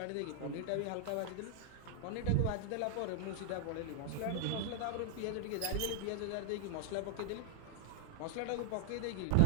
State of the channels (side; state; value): both; different; correlation 0.00